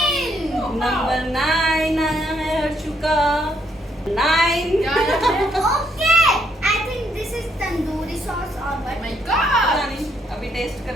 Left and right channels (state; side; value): normal; both; correlation 0.72